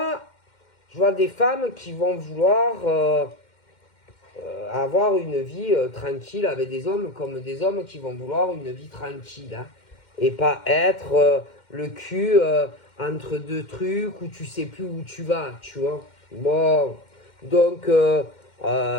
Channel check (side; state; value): right; late; 2.1 ms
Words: je vois des femmes qui vont vouloir avoir une vie tranquille avec des hommes, comme des hommes qui vont vouloir une vie tranquille. Hein, et pas être le cul entre deux trucs où tu sais plus où tu vas, tu vois. Bon, donc,